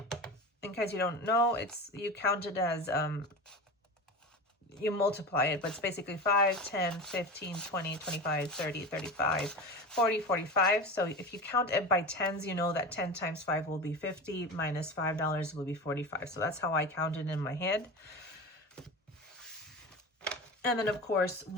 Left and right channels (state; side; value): normal; both; correlation 0.28